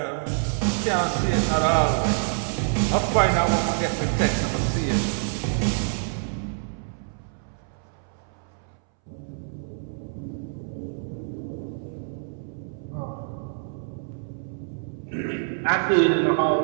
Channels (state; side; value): silent; left; 61 dB below the other